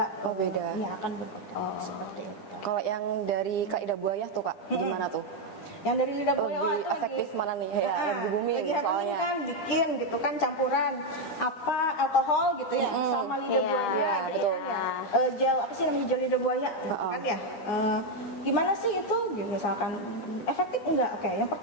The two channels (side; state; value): right; late; 9.9 ms